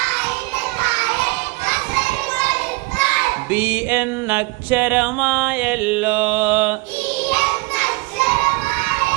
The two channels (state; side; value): quieter; left; 24.8 dB